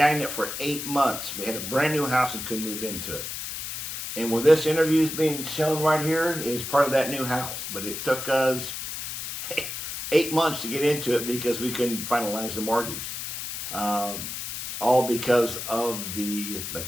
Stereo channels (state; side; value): noise; left; hiss, 6 dB below the sound